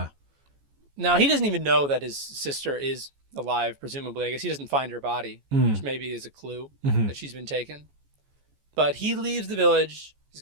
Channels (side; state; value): left; late; 14 ms